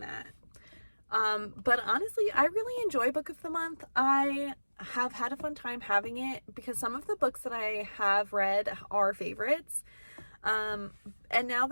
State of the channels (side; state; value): both; inverted; correlation -1.00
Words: that. But honestly, I really enjoy book of the month. I have had a fun time having it because some of the books that I have read are favorites. And now